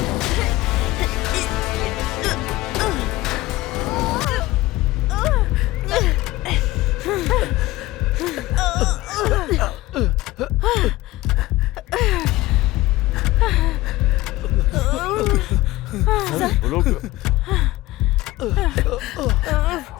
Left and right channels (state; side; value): quieter; right; 18.0 dB